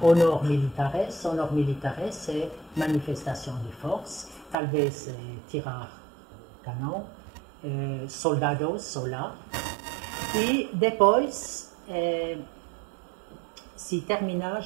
honor militares é manifestação de força, talvez tirar canão, soldados sola, e depois se termina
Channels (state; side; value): drops out; left; at 4.5 s